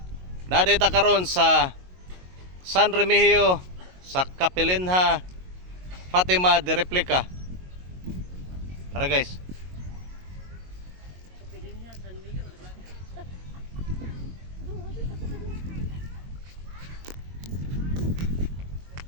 nadita karon sa San Remigio sa Kapilinha Fatima de Replica. Tara guys.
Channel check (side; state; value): left; late; 22 ms